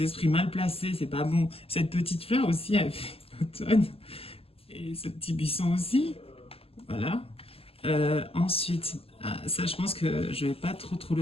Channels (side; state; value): right; late; 0.28 ms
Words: esprits mal placés, c'est pas bon. Cette petite fleur aussi, elle fait l'automne. Et ce petit buisson aussi. Voilà. Ensuite, ça, je pense que je vais pas trop